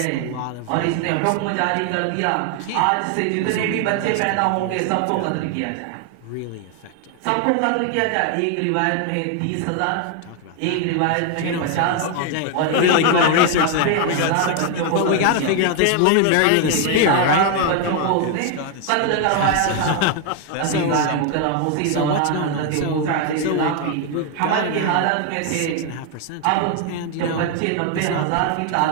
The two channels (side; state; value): both; different; correlation 0.01